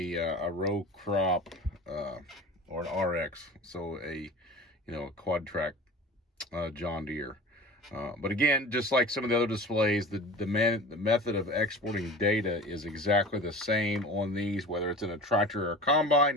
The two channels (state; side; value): normal; both; correlation 0.38